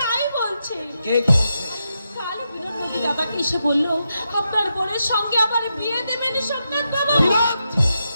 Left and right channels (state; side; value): inverted; both; correlation -0.85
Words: বলছে। কাল বিনোদ নদী দাদাকে এসে বললো আপনার বোনের সঙ্গে আবার বিয়ে দেবেন সোমনাথ বাবা।